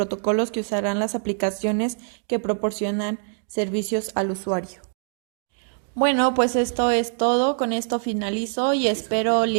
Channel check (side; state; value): left; silent; digital silence